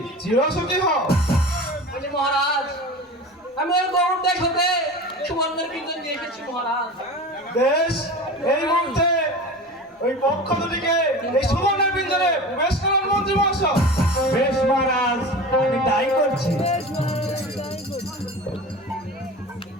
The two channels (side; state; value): both; normal; correlation 0.33